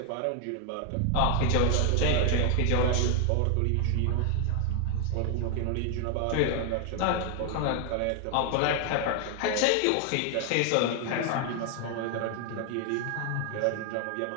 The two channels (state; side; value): different; both; correlation 0.00